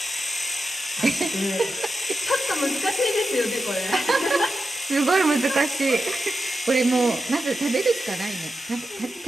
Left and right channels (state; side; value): normal; both; correlation 0.90